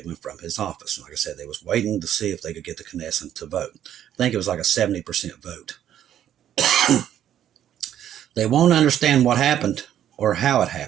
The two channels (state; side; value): quieter; left; 10.7 dB